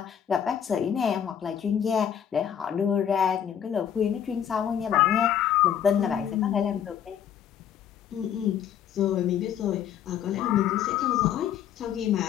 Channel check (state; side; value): quieter; right; 9.3 dB